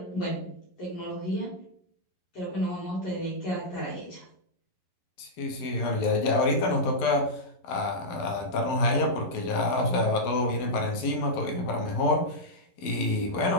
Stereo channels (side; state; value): right; late; 11 ms